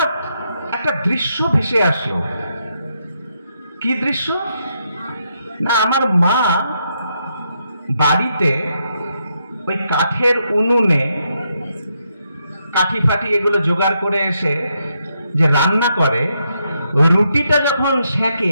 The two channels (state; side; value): inverted; both; correlation -0.80